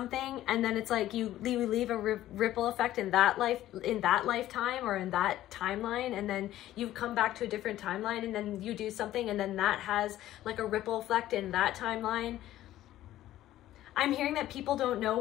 and then it's like you leave a ripple effect in that lifetime or in that timeline, and then you come back to a different timeline, and then you do something, and then that has like a ripple effect in that timeline. I'm hearing that people don't know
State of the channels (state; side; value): quieter; right; 13.9 dB